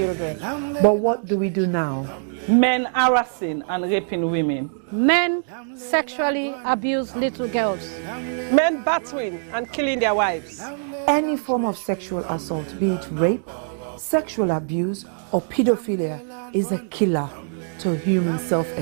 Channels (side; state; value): left; silent; digital silence